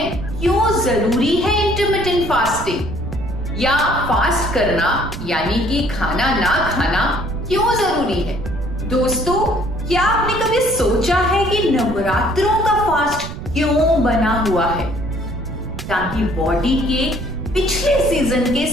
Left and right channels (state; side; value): noise; right; rumble, 9 dB below the sound